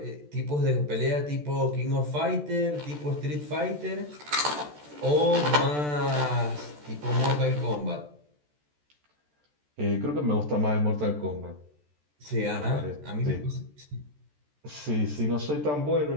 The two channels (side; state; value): left; late; 14 ms